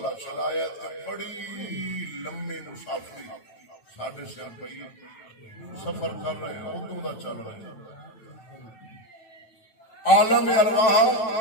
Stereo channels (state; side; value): late; right; 9.1 ms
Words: چلایا تے بڑی لمبی مسافری ساڑھے سے پئی سفر کر رہے ہیں ادو دا چل رہے ہیں عالم ارواح